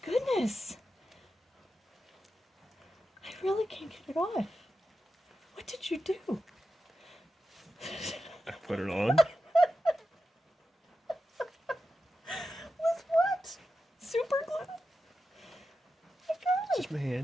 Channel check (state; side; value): normal; both; correlation 0.90